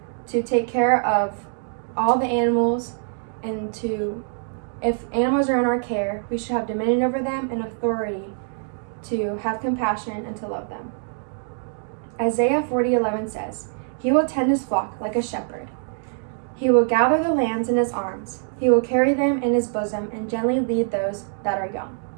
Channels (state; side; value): silent; left; digital silence